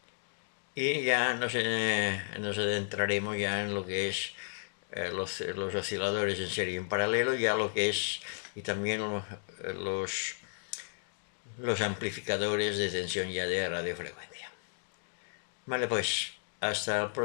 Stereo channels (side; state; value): right; silent; digital silence